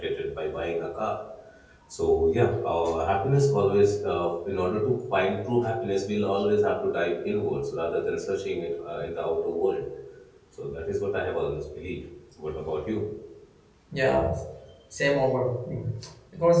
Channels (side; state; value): both; identical; correlation 1.00